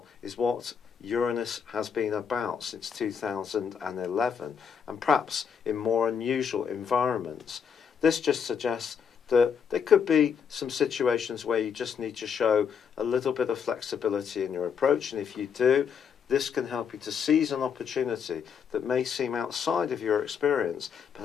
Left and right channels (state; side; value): quieter; right; 7.0 dB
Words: is what Uranus has been about since 2011, and perhaps in more unusual environments. This just suggests that there could be some situations where you just need to show a little bit of flexibility in your approach, and if you do, this can help you to seize an opportunity that may seem outside of your experience, but